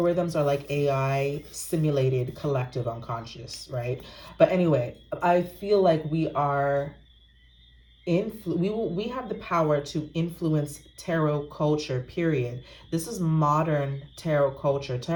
are like AI simulated collective unconscious, right? But anyway, I feel like we have the power to influence tarot culture, period. This is modern tarot culture.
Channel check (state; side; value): identical; both; correlation 1.00